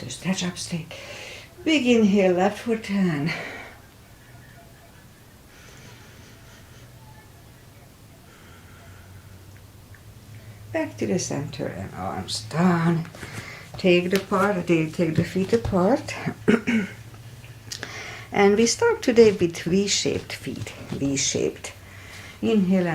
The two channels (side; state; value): both; identical; correlation 1.00